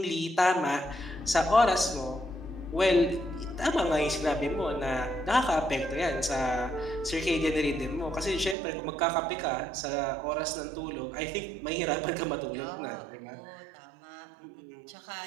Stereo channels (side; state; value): left; drops out; at 8.6 s